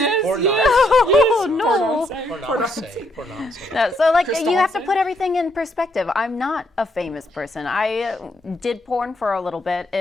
Or not. Oh, no. Or not say. Or not say. No, so, like, Crystal you have to Hansen? put everything in perspective. I'm not a famous person. I did porn for a little bit,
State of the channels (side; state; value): both; normal; correlation 0.74